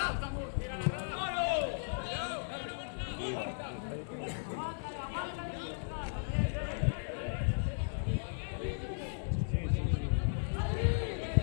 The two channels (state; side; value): silent; right; digital silence